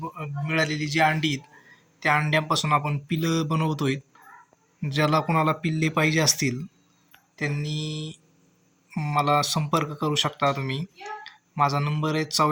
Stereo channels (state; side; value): identical; both; correlation 1.00